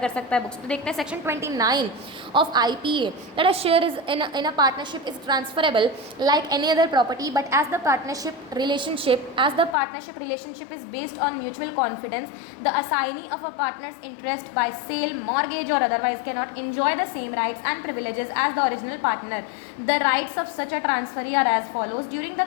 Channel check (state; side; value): drops out; right; at 9.8 s